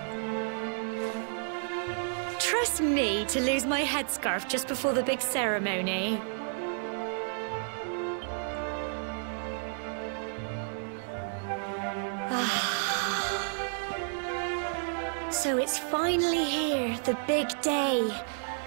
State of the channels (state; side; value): silent; left; 57 dB below the other